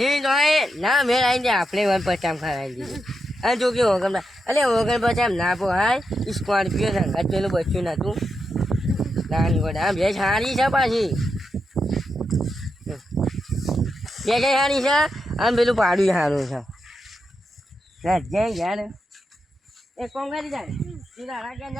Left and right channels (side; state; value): both; normal; correlation 0.86